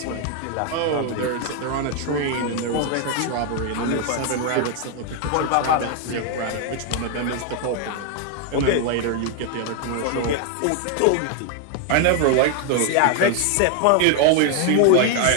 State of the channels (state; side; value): different; both; correlation 0.00